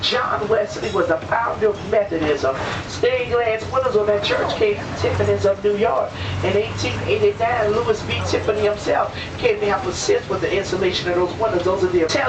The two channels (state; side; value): identical; both; correlation 1.00